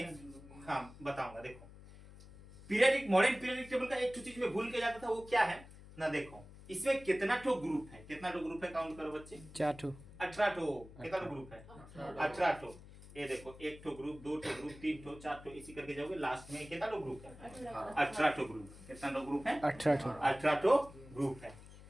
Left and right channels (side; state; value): left; noise; hum, 18 dB below the sound